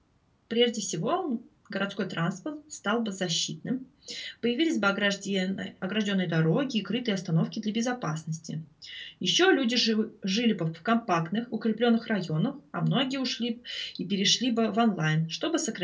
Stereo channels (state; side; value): identical; both; correlation 1.00